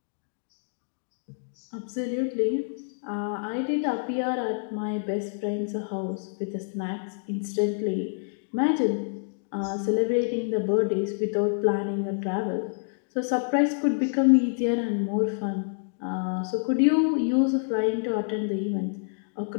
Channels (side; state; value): right; silent; digital silence